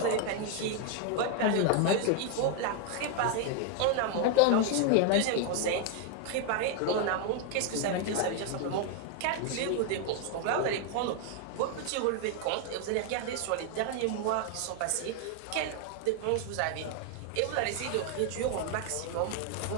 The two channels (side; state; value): both; different; correlation 0.01